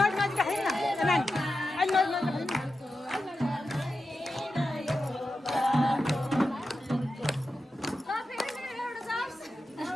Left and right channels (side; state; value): both; normal; correlation 0.90